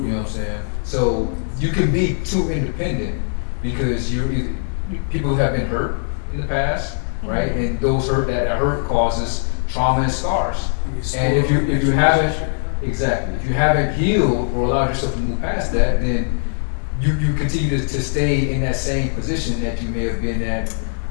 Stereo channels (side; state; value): right; silent; 66 dB below the other